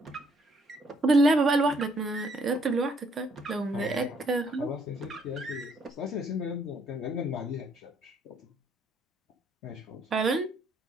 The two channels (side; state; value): both; normal; correlation 0.68